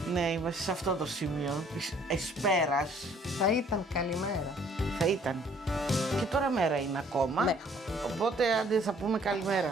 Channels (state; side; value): normal; both; correlation 0.59